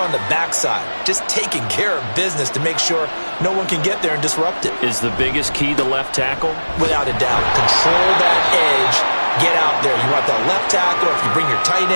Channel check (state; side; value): inverted; both; correlation -1.00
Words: the back side? Just taking care of business to make sure no one can get there and disrupt it. Is the biggest key the left tackle? Without a doubt. Control that edge. Get out there. You want that left tackle, if you bring your tight